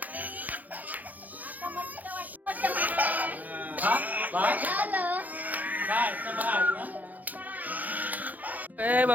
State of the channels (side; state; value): left; late; 0.081 ms